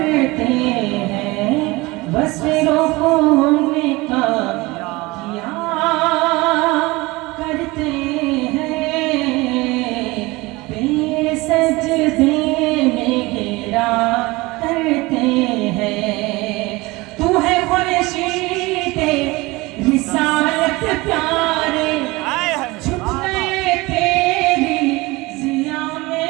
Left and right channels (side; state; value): left; quieter; 22.2 dB